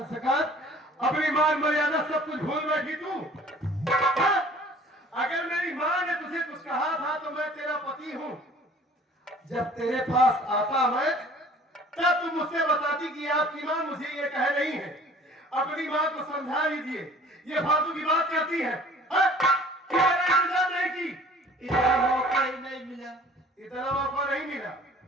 अपनी मान मर्यादा सब कुछ भूल बैठी तू? हाँ? अगर मेरी माँ ने तुझे कुछ कहा था तो मैं तेरा पति हूँ। जब तेरे पास आता मैं तब तुम मुझसे बताती कि आपकी माँ मुझे ये कह रही है। अपनी माँ को समझा लीजिए, ये फालतू की बात कहती है। हाँ? कि मैंने इंतजार नहीं की, इतना मौका ही नहीं मिला। इतना मौका नहीं मिला,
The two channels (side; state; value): both; normal; correlation 0.50